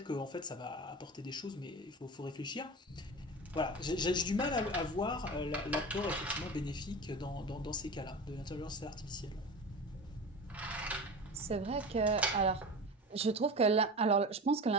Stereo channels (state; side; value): normal; both; correlation 0.30